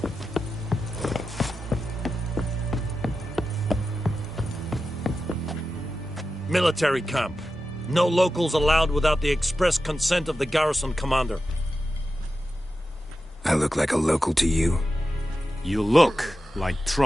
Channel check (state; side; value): normal; both; correlation 0.91